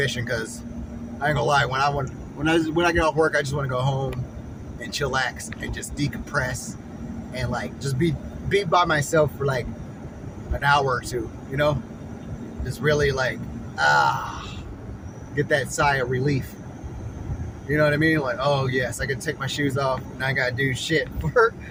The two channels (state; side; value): identical; both; correlation 1.00